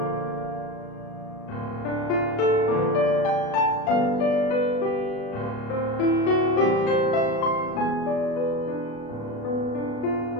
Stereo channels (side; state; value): right; late; 36 ms